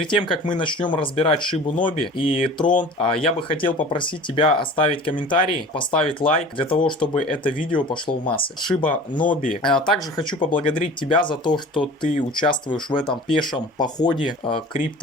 тем, как мы начнем разбирать Шибу Ноби и Трон, я бы хотел попросить тебя оставить комментарий, поставить лайк, для того, чтобы это видео пошло в массы. Шиба Ноби. Также хочу поблагодарить тебя за то, что ты участвуешь в этом пешем походе в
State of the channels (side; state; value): both; normal; correlation 0.41